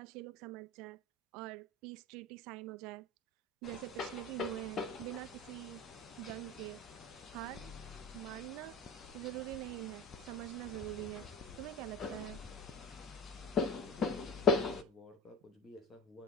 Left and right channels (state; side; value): normal; both; correlation 0.31